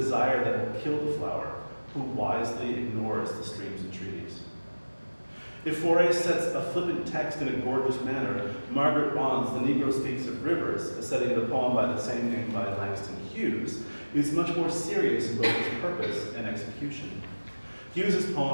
that will kill the flower, who wisely ignores the stream's entreaties. If Fauré sets a flippant text in a gorgeous manner, Margaret Bond's The Negro Speaks of Rivers, a setting of the poem by the same name by Langston Hughes, is much more serious in both its purpose and execution. Hughes's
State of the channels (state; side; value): inverted; both; correlation -1.00